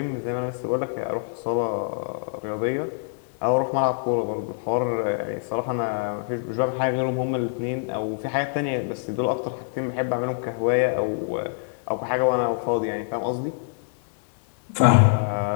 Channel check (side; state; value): right; silent; digital silence